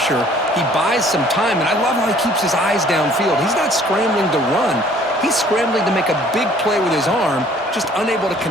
He buys some time, and I love how he keeps his eyes downfield. He's not scrambling to run. He's scrambling to make a big play with his arm, just unable to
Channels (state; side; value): normal; both; correlation 0.56